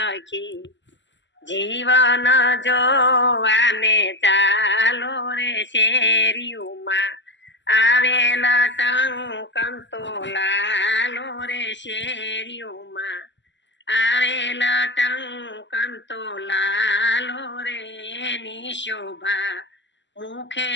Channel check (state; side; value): late; right; 0.53 ms